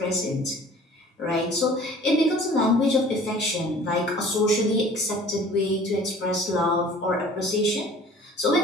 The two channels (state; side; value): normal; both; correlation 0.48